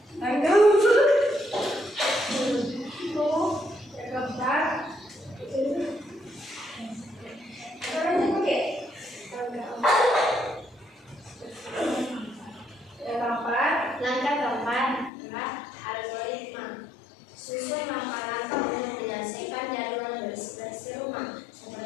Langkah keempat adalah algoritma. Susun langkah-langkah untuk menyelesaikan jadwal bersih-bersih rumah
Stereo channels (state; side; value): drops out; right; at 15.1 s